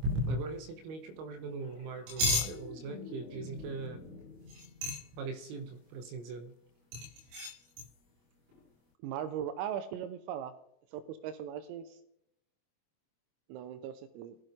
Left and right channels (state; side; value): late; left; 25 ms